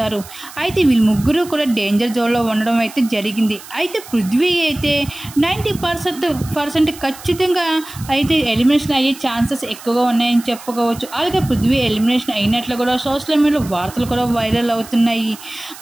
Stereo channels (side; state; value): right; noise; hiss, 17 dB below the sound